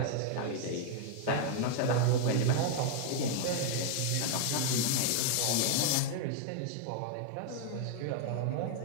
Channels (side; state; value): both; different; correlation 0.00